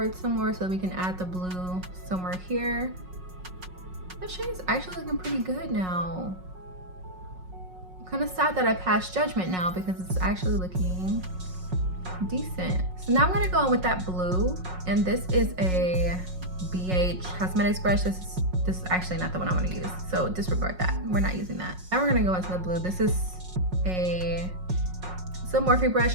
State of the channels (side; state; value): left; late; 5.5 ms